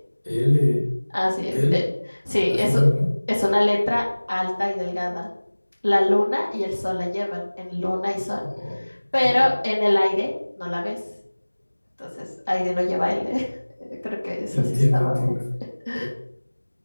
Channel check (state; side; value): inverted; both; correlation -1.00